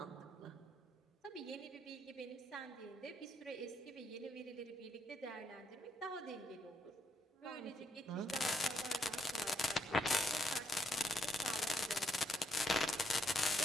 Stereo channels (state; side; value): normal; both; correlation 0.76